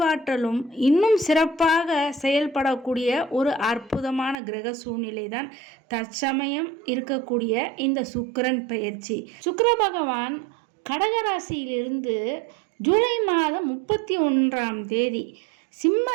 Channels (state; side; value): drops out; left; at 4.4 s